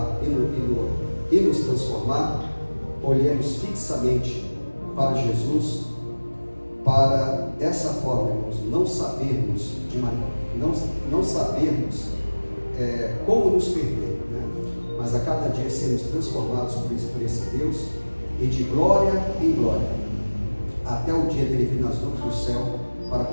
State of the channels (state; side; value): inverted; both; correlation -1.00